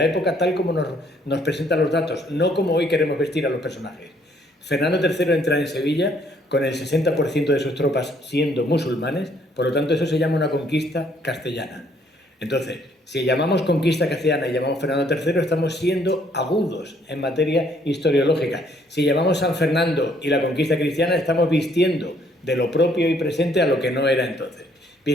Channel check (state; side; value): normal; both; correlation 0.66